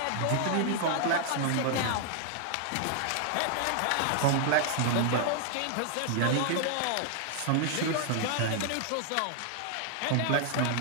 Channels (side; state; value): both; different; correlation 0.00